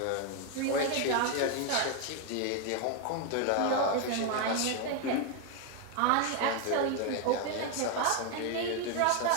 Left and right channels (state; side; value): different; both; correlation 0.01